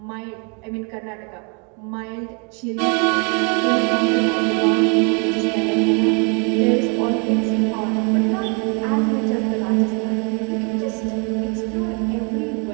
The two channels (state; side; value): quieter; left; 35.6 dB